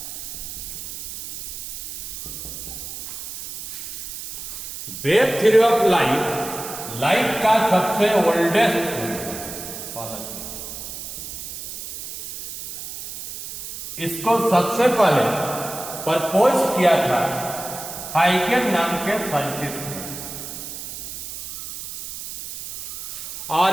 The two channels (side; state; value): right; noise; hiss, 9 dB below the sound